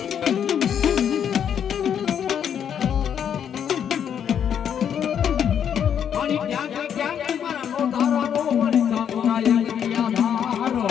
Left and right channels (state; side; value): quieter; right; 8.6 dB